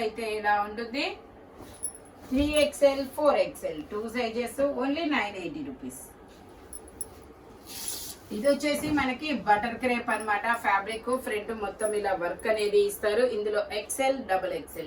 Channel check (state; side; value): identical; both; correlation 1.00